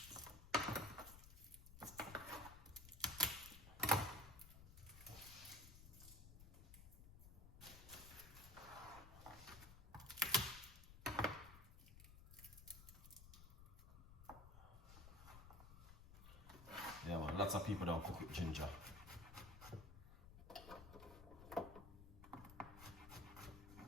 Yeah, man, lots of people don't cook with ginger.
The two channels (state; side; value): noise; left; rumble, 14 dB below the sound